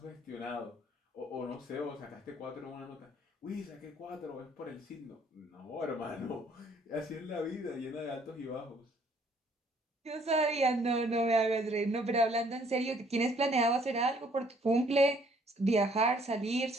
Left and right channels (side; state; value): both; normal; correlation 0.62